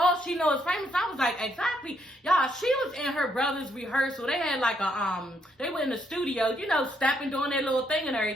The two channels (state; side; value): normal; both; correlation 0.73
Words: she knows is famous. I was like, exactly. Y'all, she was in her brother's rehearsal. They had like they were in the studio, you know, stepping, doing their little thing and